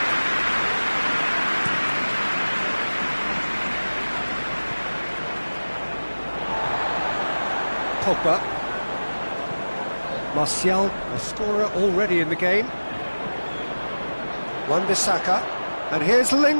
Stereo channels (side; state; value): both; inverted; correlation -1.00